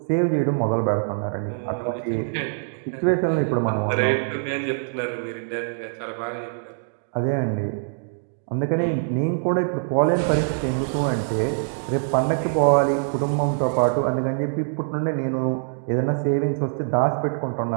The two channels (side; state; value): left; silent; digital silence